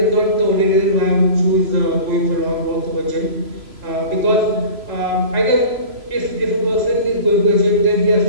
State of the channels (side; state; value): left; late; 3.0 ms